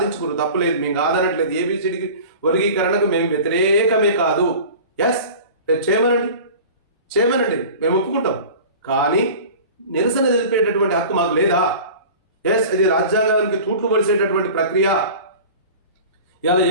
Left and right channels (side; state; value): both; inverted; correlation -0.39